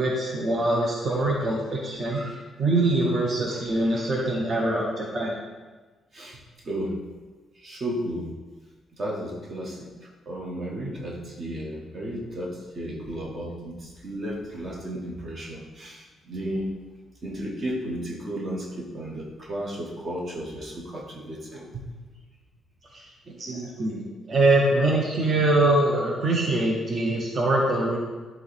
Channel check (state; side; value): normal; both; correlation 0.66